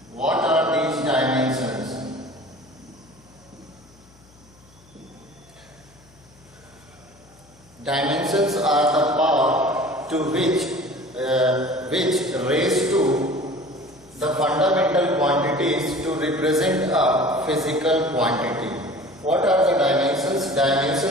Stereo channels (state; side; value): noise; left; hum, 28 dB below the sound